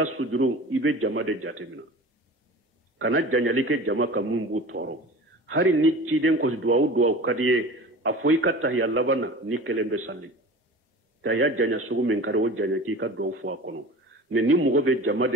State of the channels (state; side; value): normal; both; correlation 0.37